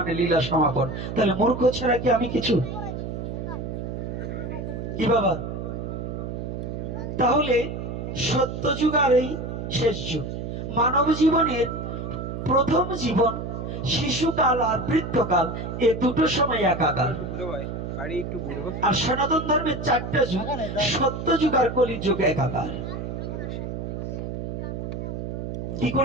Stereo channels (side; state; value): right; noise; hum, 5 dB below the sound